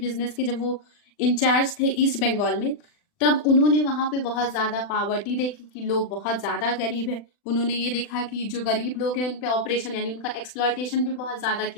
के, जब वो इंचार्ज थे ईस्ट बंगाल में, तब उन्होंने वहां पे बहुत ज्यादा पावर्टी देखी कि लोग बहुत ज्यादा गरीब है। उन्होंने ये देखा कि जो गरीब लोग हैं उन पे ऑपरेशन यानी उनका एक्सप्लॉयटेशन भी बहुत ज्यादा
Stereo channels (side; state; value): right; late; 40 ms